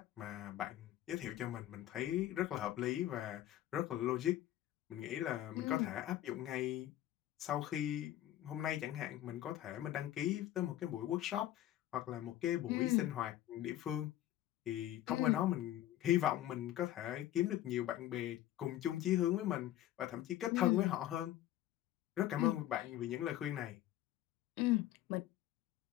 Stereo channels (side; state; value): right; quieter; 13.4 dB